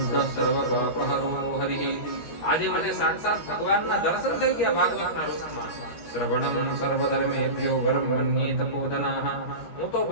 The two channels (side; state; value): right; late; 13 ms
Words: સર્વ પાપહરો હરિઃ. આજે મને સાક્ષાત ભગવાનના દર્શન થઈ ગયા ભાગવતના રૂપમાં. શ્રવણમ સર્વધર્મેભ્યો વરમ મન્યે તપોધનાઃ. હું તો